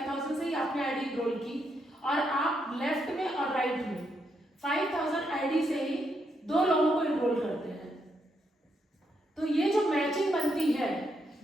से ही आपने आईडी इनरोल की और आप लेफ्ट में और राइट में 5000 आईडी से ही 2 लोगों को इनरोल करते हैं, तो ये जो मैचिंग बनती है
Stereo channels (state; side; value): normal; both; correlation 0.79